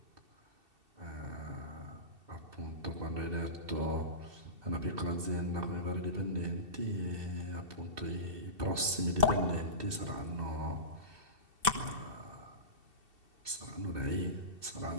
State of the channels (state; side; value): late; left; 2.7 ms